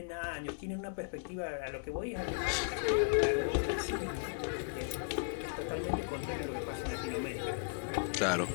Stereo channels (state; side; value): silent; right; digital silence